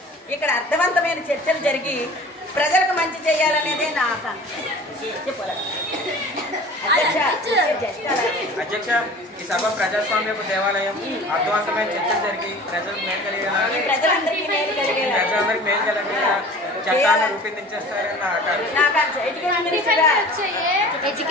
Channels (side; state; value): both; normal; correlation 0.42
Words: ఇక్కడ అర్థవంతమైన చర్చలు జరిగి ప్రజలకు మంచి చేయాలనేదే నా ఆకాంక్ష. అధ్యక్ష, ఈ సభ ప్రజాస్వామ్యపు దేవాలయం. అర్థవంతమైన చర్చలు జరిగి ప్రజలందరికీ మేలు కలిగేలా చట్టాలను రూపొందించేస్తారని నా ఆకాంక్ష.